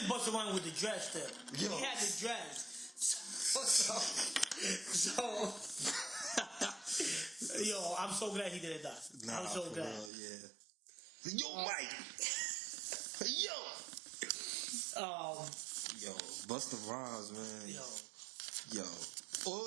busted around with the dress still. Yo. He had the dress. So yo, I'm so glad he didn't die. I'm so glad. Real, yeah. Yo, Mike. Yo. Yo, Busta Rhymes, man. Yo. Yo.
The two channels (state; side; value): drops out; left; at 10.1 s